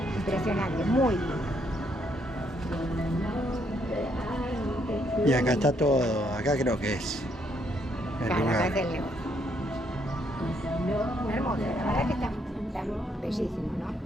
impresionante, muy lindo. Y acá está todo, acá creo que es el Claro, acá lugar. es el negocio. Hermoso, la verdad que está bellísimo, ¿no?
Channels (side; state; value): both; normal; correlation 0.72